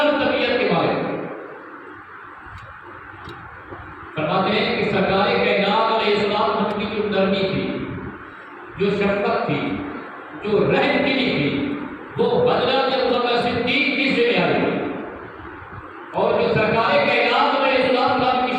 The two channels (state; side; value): identical; both; correlation 1.00